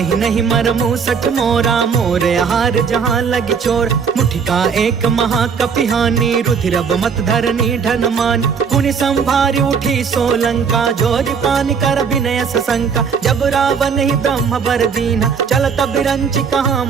ही नहीं मरमु सठ मोरा मोर आहार जहाँ लगी चोर। मुठिका एक महाकपिहानी रुधिरब मत धरनी ढन मान। पुनि संभारी उठी सो लंका जोरी पानी कर विनय सशंका। जब रावण ही ब्रह्म बर दीना चल तब रंची कहाँ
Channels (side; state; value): left; quieter; 6.2 dB